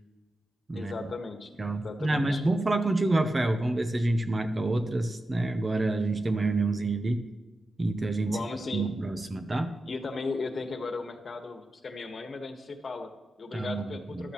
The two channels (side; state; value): both; normal; correlation 0.91